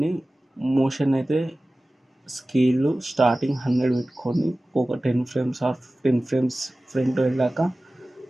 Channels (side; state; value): both; normal; correlation 0.97